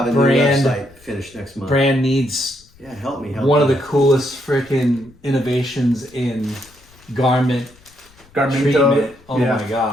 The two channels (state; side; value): noise; left; rumble, 28 dB below the sound